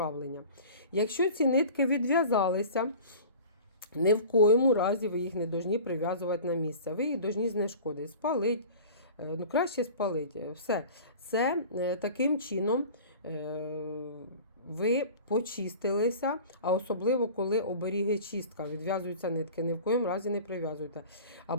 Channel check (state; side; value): inverted; both; correlation -0.40